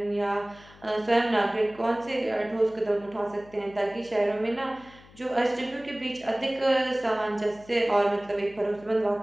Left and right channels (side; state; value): left; noise; hum, 23 dB below the sound